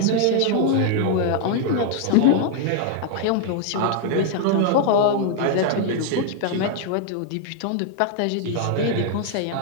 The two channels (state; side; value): different; both; correlation 0.00